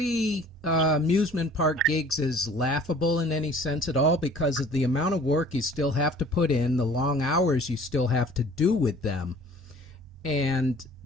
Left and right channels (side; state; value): both; normal; correlation 0.51